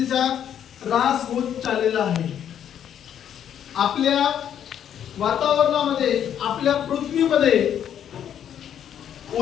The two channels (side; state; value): right; quieter; 9.5 dB